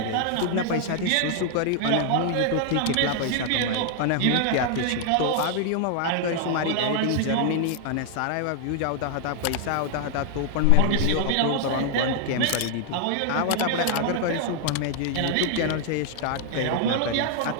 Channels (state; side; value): different; both; correlation 0.00